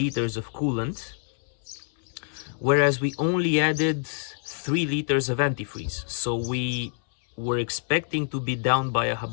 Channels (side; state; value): right; silent; 61 dB below the other